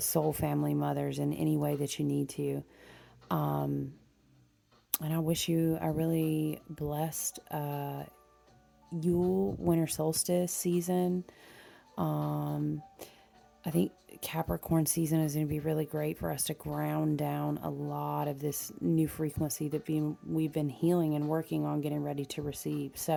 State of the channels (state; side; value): identical; both; correlation 1.00